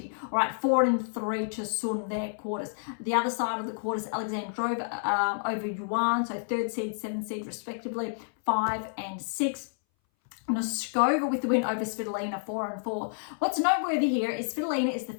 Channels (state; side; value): silent; right; 58 dB below the other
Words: All right, 4 and 3 to Sun there, quarters. The other side of the quarters, Alexandrova over Yuan, so 3rd seed, 7th seed respectively, 5 and 6. Noskova with the win over Svitolina, 4 and 4. What's noteworthy here is Svitolina is the